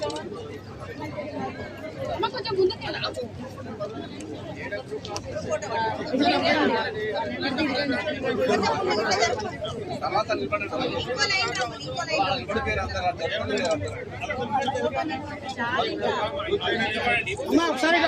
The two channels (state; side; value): identical; both; correlation 1.00